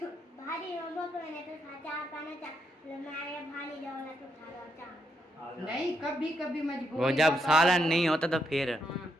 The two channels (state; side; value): normal; both; correlation 0.80